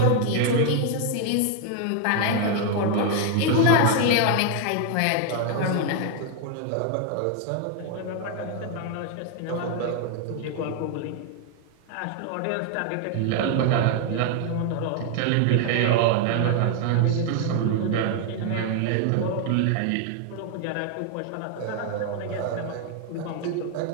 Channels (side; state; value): both; different; correlation 0.00